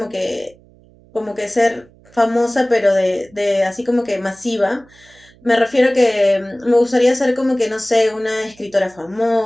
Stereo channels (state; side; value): noise; right; hum, 28 dB below the sound